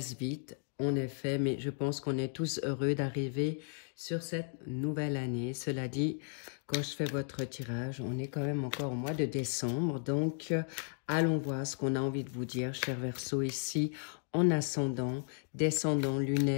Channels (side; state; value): right; silent; digital silence